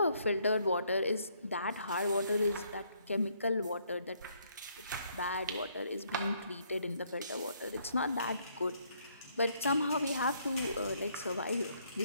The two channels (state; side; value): inverted; both; correlation -0.70